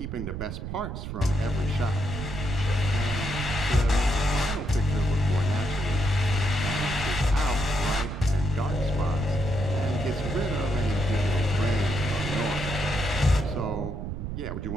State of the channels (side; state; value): right; noise; rumble, 5 dB below the sound